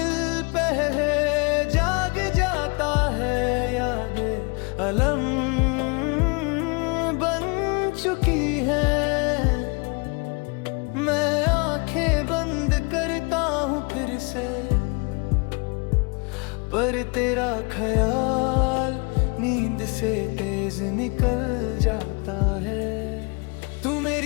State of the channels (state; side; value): quieter; right; 31.9 dB